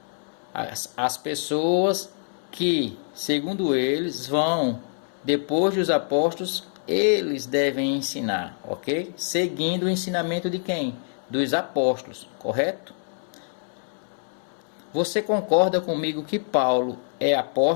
as pessoas que, segundo eles, vão, depois dos apóstolos, eles devem ensinar, ok? Seguindo o ensinamento de quem? Dos apóstolos, correto? Você concorda comigo que Paulo é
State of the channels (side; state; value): right; silent; 61 dB below the other